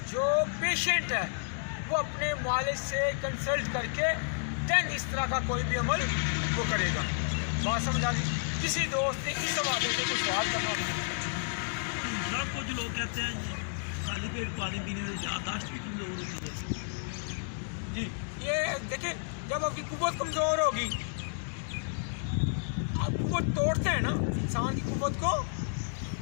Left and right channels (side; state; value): right; silent; digital silence